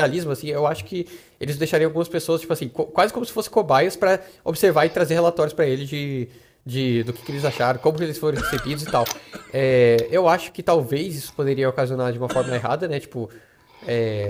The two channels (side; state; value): both; identical; correlation 1.00